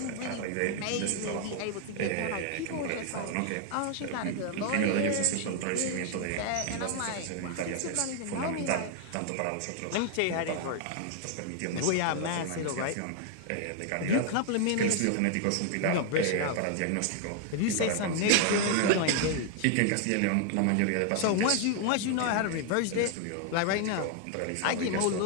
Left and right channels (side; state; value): both; different; correlation 0.00